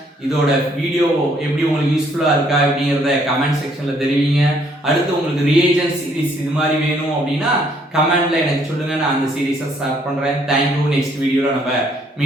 இதோட வீடியோ எப்படி உங்களுக்கு யூஸ்ஃபுல்லா இருக்கா அப்படிங்கறத கமெண்ட் செக்ஷன்ல தெரிவிங்க. அடுத்து உங்களுக்கு ரியேஜன்ட் சீரிஸ் இது மாதிரி வேணும் அப்படின்னா கமெண்ட்ல எனக்கு சொல்லுங்க, நான் அந்த சீரிஸை ஸ்டார்ட் பண்றேன். தேங்க்யூ. நெக்ஸ்ட் வீடியோல நம்ம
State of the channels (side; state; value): both; normal; correlation 0.66